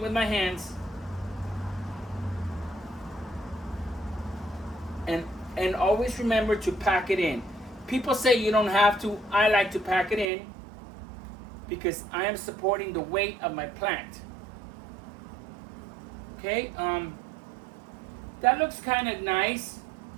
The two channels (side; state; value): left; drops out; at 10.2 s